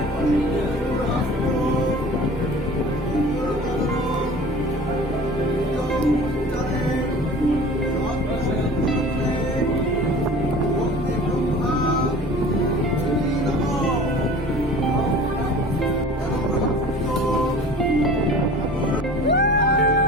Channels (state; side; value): normal; both; correlation 0.42